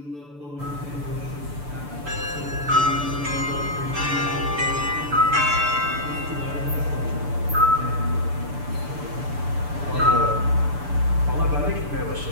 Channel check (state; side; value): late; left; 6.9 ms